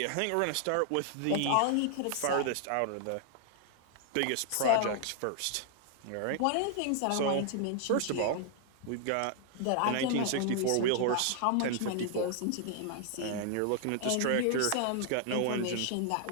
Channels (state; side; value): different; both; correlation 0.00